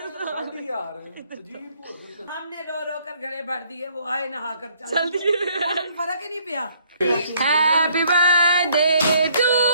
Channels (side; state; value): both; inverted; correlation -0.64